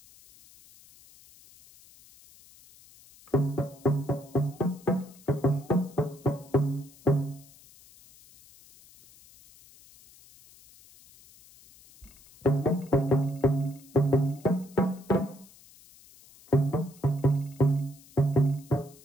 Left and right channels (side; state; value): left; noise; hiss, 25 dB below the sound